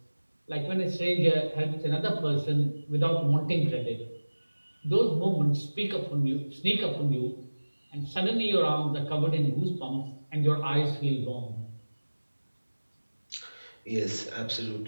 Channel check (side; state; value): both; inverted; correlation -1.00